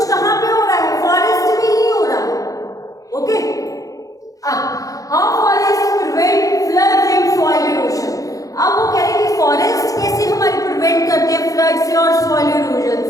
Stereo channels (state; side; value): late; right; 0.17 ms